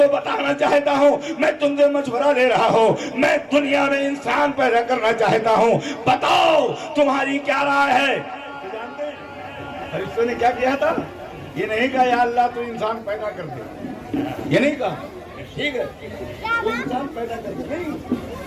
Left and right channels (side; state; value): both; identical; correlation 1.00